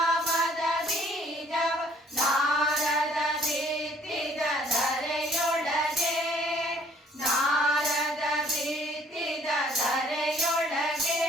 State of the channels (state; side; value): normal; both; correlation 0.60